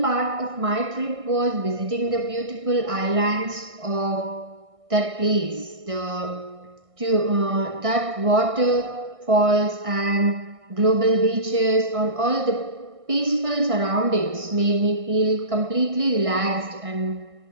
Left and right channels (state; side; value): late; left; 1.6 ms